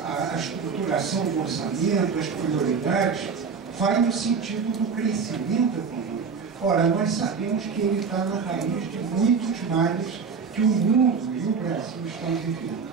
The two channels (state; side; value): quieter; left; 5.6 dB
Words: a estruturação do orçamento, as prioridades, vai no sentido do crescimento econômico. Ora, nós sabemos que ele está na raiz de muitos males que o mundo e o Brasil estão vivendo.